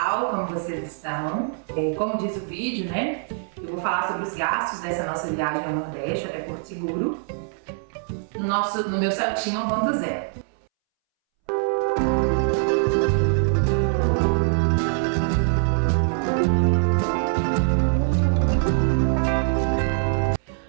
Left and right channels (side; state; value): left; silent; 63 dB below the other